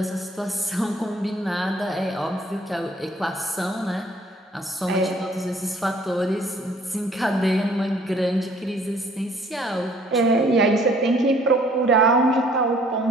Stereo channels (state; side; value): normal; both; correlation 0.59